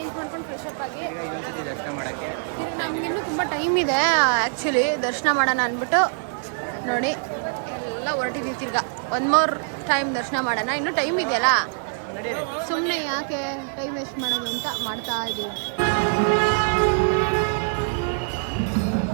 ಮಾಡ್ಕೊಂಡು ಫ್ರೆಶ್ ಅಪ್ ಆಗಿ ಈಗ ಇನ್ನೊಂದ್ಸತಿ ದರ್ಶನ ಮಾಡಕ್ಕೆ ನಮ್ಗಿನ್ನೂ ತುಂಬ ಟೈಮ್ ಇದೆ ಆ್ಯಕ್ಚುಲಿ ದರ್ಶನ ಮಾಡೋಣ ಅಂದ್ಬಿಟ್ಟು ನೋಡಿ ಎಲ್ಲ ಹೊರಟಿದ್ದೀವಿ. ತಿರ್ಗಾ ಒನ್ ಮೋರ್ ಟೈಮ್ ದರ್ಶನ ಮಾಡೋಣ, ಇನ್ನೂ ಟೈಮ್ ಇದೆಯಲ್ಲ, ಸುಮ್ಮನೆ ಯಾಕೆ ಟೈಮ್ ವೇಸ್ಟ್ ಮಾಡೋದು ಅಂತ ಮಾಡ್ತಾ ಇದ್ದೀವಿ.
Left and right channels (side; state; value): left; silent; 55 dB below the other